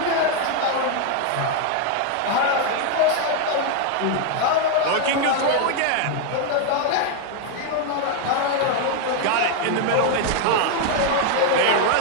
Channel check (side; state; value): both; different; correlation 0.01